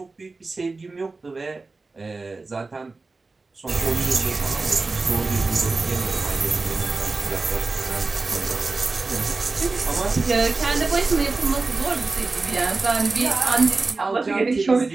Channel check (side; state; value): left; quieter; 3.7 dB